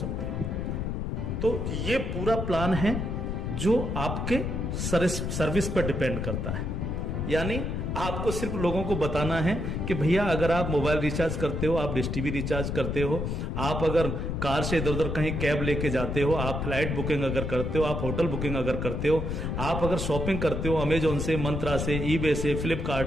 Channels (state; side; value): noise; left; rumble, 2 dB below the sound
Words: हैं। तो ये पूरा प्लान है जो आपके सर्विस पर डिपेंड करता है। यानी आपको सिर्फ लोगों को बताना है कि भैया अगर आप मोबाइल रिचार्ज करते हो, आप डिश टीवी रिचार्ज करते हो, आप अगर कार से इधर उधर कहीं कैब लेके जाते हो, आप फ्लाइट बुकिंग अगर करते हो, आप होटल बुकिंग अगर करते हो, आप अगर शॉपिंग करते हो अमेजोन से, मंत्रा से, ईबे से, फ्लिपकार्ट